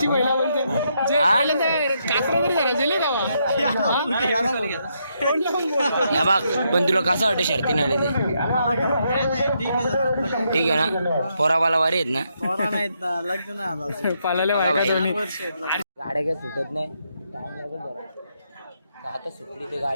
पहिला बोलते जे हा? पहिल्यांदा कासरा तरी झाला जेले गावा. या बघ, पण तुला कसं वाटतं शर्तीने आले ते? ठीक आहे ना? पोराबाला वारी आहेत ना? पालाले बघा भाई. दोन्ही. गाड्या काही सुटत नाही. टाइम लागेल बरं. तर आता सुटली ती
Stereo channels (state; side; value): inverted; both; correlation -0.78